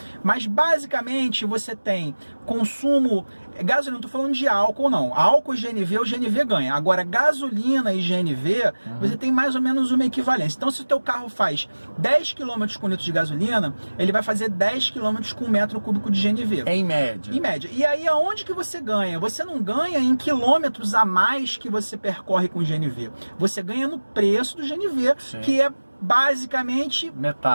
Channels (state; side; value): inverted; both; correlation -1.00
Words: Mas basicamente você tem consumo... Gasolina, não estou falando de álcool não. Álcool e GNV, o GNV ganha. Agora, gasolina e GNV, você tem mais ou menos uma equivalência. Então, se o teu carro faz 10 km com litro de gasolina, ele vai fazer 10 km com 1 metro cúbico de GNV. Em média. Em média. E aí, aonde que você ganha? Você não ganha em quilômetros a mais que você percorre com o GNV. Você ganha no preço do GNV, que é basicamente